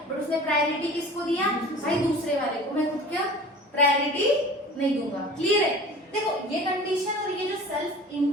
बट उसने प्रायोरिटी किसको दिया, भाई दूसरे वाले को, मैं खुद क्या प्रायोरिटी नहीं दूंगा। क्लियर है? देखो ये कंडीशन और ये जो सेल्फ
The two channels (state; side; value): normal; both; correlation 0.41